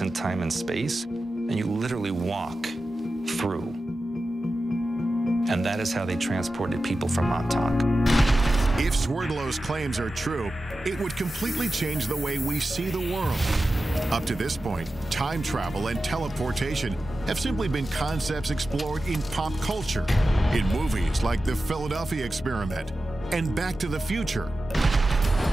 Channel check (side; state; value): both; normal; correlation 0.93